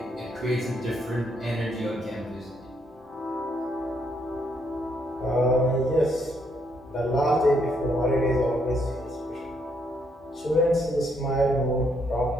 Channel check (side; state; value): both; normal; correlation 0.73